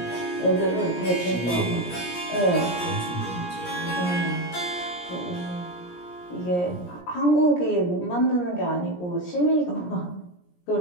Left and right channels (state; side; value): late; right; 17 ms